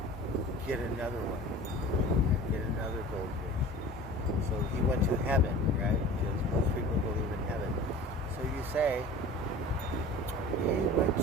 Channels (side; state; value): both; normal; correlation 0.40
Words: get another one, get another goldfish. So he went to heaven, right? Because most people believe in heaven. So you say he went